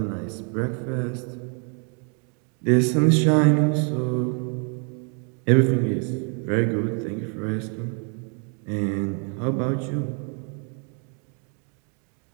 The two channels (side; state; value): left; quieter; 39.6 dB